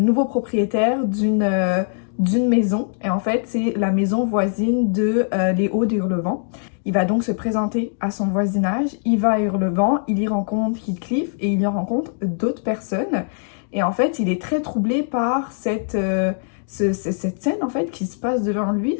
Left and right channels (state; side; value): silent; right; digital silence